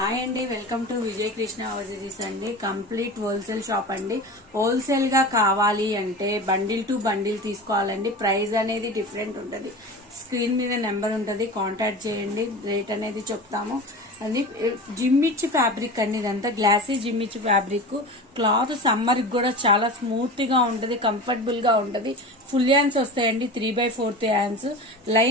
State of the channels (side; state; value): both; normal; correlation 0.31